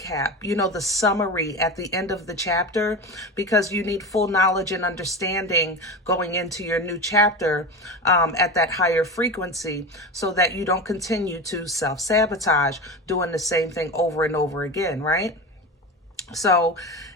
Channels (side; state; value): both; normal; correlation 0.25